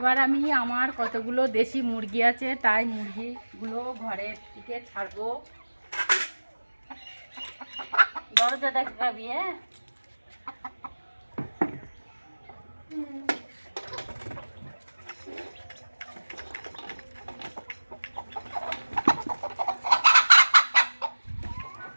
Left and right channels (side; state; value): both; inverted; correlation -1.00